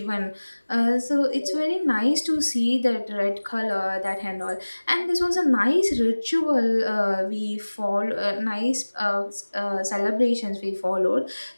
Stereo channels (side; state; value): both; inverted; correlation -1.00